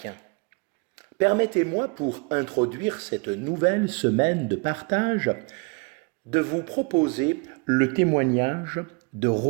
Permettez-moi, pour introduire cette nouvelle semaine de partage, de vous proposer le témoignage de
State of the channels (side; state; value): left; quieter; 31.0 dB